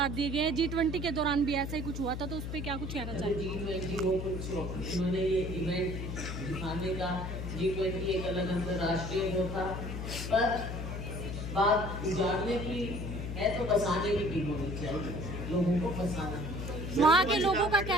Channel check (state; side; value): noise; left; hum, 5 dB below the sound